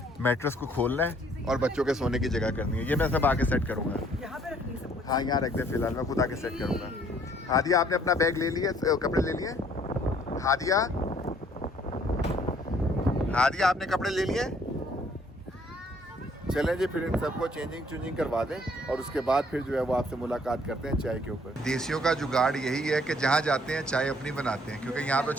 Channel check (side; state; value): both; normal; correlation 0.62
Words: मैट्रेस को खोलना है और बच्चों के सोने की जगह करनी है। ये मैं सब आके सेट करूँगा। यहाँ पे रखनी है सब कुछ। हाँ, यहाँ रख दे फिलहाल, मैं खुद आके सेट करूँगा। हादिया, आपने अपना बैग ले लिया, कपड़े ले लिए? हादिया, आपने कपड़े ले लिए? चलें जी, फिर इन सबको चेंजिंग करवा दें और उसके बाद फिर जो है वो आपसे मुलाकात करते हैं चाय के ऊपर। देसियों का जुगाड़ यही है कि जहाँ जाते हैं चाय अपनी बनाते हैं, क्योंकि यहाँ तो